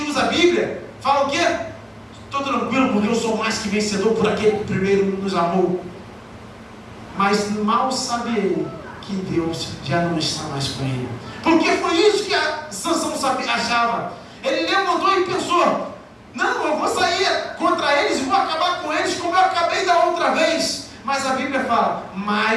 usa a Bíblia, fala o quê? Estou tranquilo porque eu sou mais que vencedor por aquele que primeiro nos amou. Mas mal sabe ele que Deus já não está mais com ele. Porque foi isso que Sansão achava. Ele levantou e pensou: não, eu vou sair contra eles e vou acabar com eles como eu acabei da outra vez. Mas a Bíblia fala:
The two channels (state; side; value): identical; both; correlation 1.00